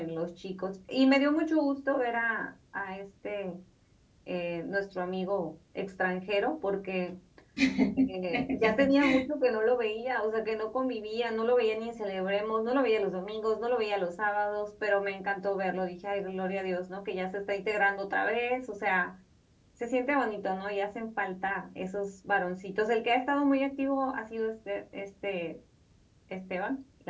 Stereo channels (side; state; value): both; identical; correlation 1.00